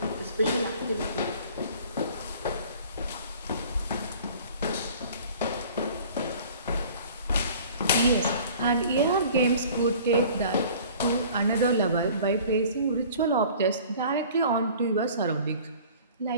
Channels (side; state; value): both; inverted; correlation -0.47